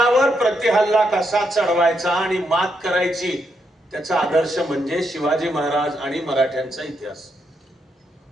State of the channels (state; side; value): normal; both; correlation 0.79